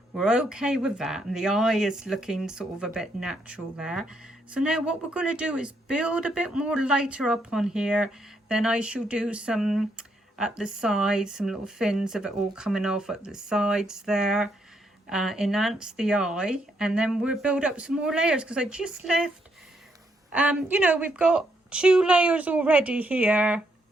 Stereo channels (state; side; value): normal; both; correlation 0.76